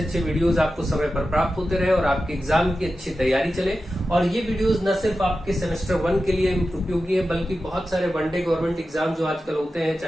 अच्छे वीडियोस आपको समय पर प्राप्त होते रहे और आपके एग्जाम की अच्छी तैयारी चले। और ये वीडियोस न सिर्फ आपके सेमेस्टर 1 के लिए उपयोगी है, बल्कि बहुत सारे वनडे गवर्नमेंट एग्जाम जो आजकल होते हैं,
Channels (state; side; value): normal; both; correlation 0.92